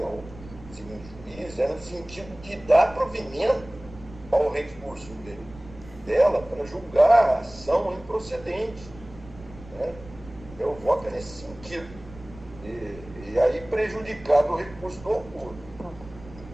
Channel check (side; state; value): right; noise; rumble, 18 dB below the sound